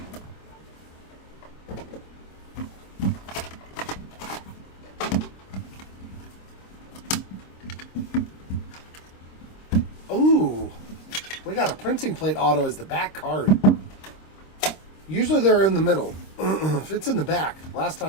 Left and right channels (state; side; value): late; right; 26 ms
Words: We got a printing plate auto as the back card. Usually they're in the middle. If it's in the back. Last